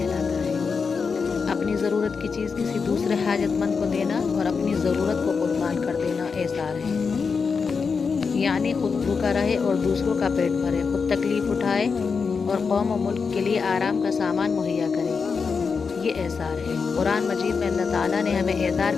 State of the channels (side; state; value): right; quieter; 5.3 dB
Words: ہے۔ اپنی ضرورت کی چیز کسی دوسرے حاجت مند کو دینا اور اپنی ضرورت کو قربان کر دینا ایثار ہے۔ یعنی خود بھوکا رہے اور دوسروں کا پیٹ بھرے، خود تکلیف اٹھائے اور قوم و ملک کے لیے آرام کا سامان مہیا کرے، یہ ایثار ہے۔ قرآن مجید میں اللہ تعالیٰ نے ہمیں ایثار